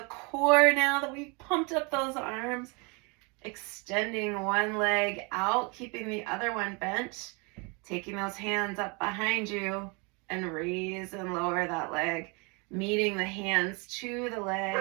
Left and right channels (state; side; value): quieter; left; 30.7 dB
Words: core now that we've pumped up those arms. Extending one leg out, keeping the other one bent. Taking those hands up behind you and raise and lower that leg. Meeting the hands to the